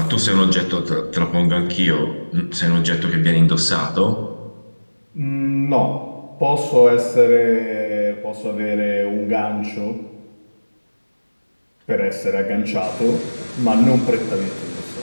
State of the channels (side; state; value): both; inverted; correlation -1.00